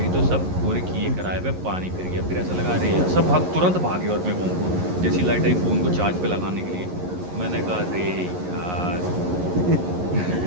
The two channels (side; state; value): left; late; 11 ms